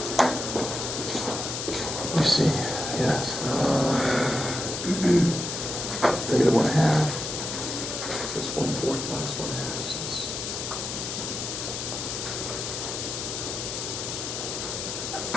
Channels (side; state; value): left; noise; hiss, 4 dB below the sound